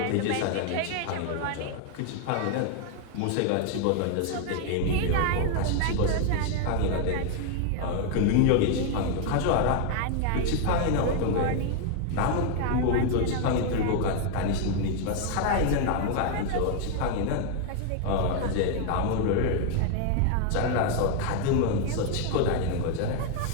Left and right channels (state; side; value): different; both; correlation 0.01